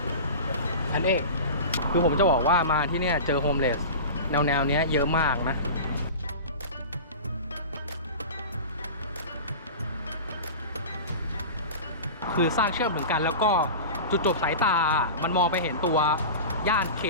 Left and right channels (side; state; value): both; inverted; correlation -0.31